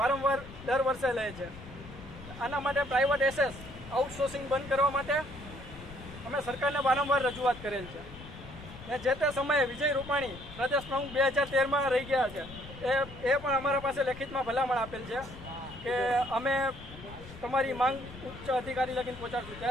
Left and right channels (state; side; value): noise; left; rumble, 15 dB below the sound